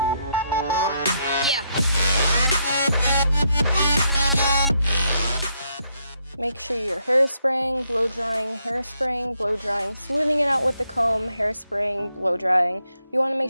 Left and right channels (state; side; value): inverted; both; correlation -0.77